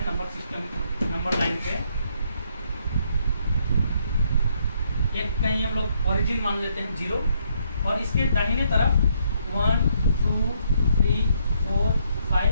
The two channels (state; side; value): inverted; both; correlation -0.72